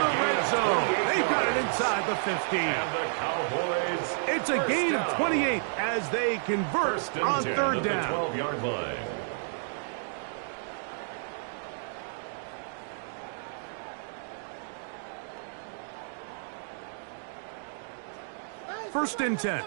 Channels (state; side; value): silent; left; digital silence